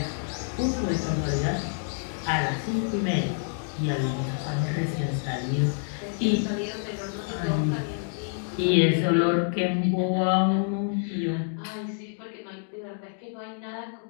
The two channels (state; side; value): silent; right; digital silence